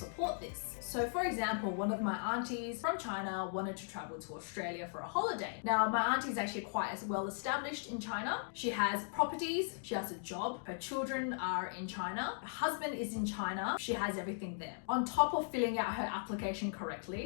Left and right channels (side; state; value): right; silent; digital silence